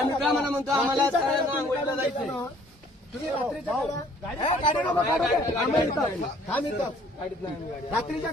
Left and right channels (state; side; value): normal; both; correlation 0.58